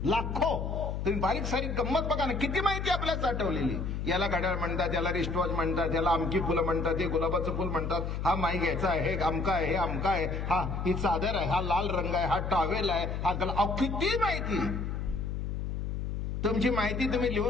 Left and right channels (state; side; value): noise; left; hum, 3 dB below the sound